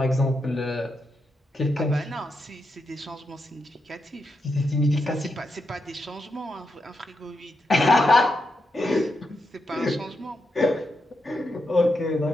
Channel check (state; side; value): normal; both; correlation 0.85